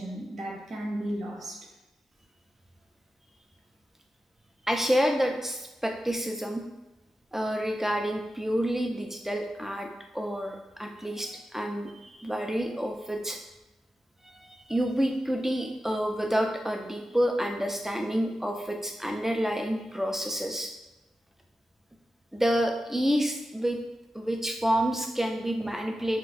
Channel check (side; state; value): both; normal; correlation 0.92